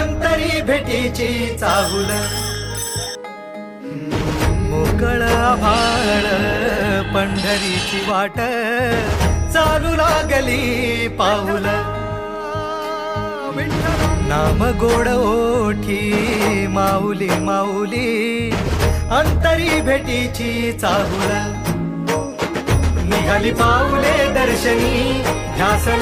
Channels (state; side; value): identical; both; correlation 1.00